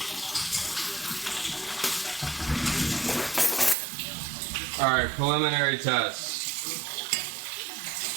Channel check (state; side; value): drops out; left; at 3.8 s